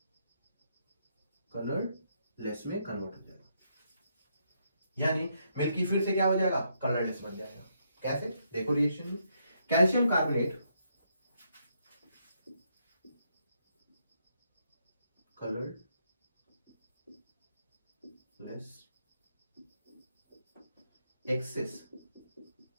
कलरलेस में कन्वर्ट हो जाएगा। यानी मिल्की फिर से क्या हो जाएगा, कलरलेस बन जाएगा। कैसे, देखो रिएक्शन में, calcium carbonate colourless, excess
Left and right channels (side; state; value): both; inverted; correlation -0.76